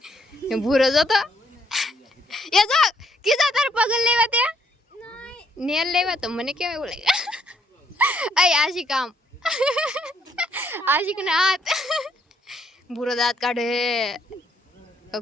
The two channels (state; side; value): normal; both; correlation 0.70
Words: એમ ભૂરો જોતો એ જો કિસા તાર પગલ લેવા તે નેલ લેવા તો મને કેમ એવું લાગે. અય આશિક આમ આશિક ના હાથ ભૂરો દાંત કાઢે